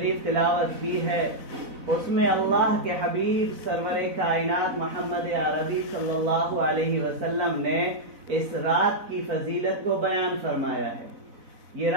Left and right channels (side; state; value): left; late; 4.0 ms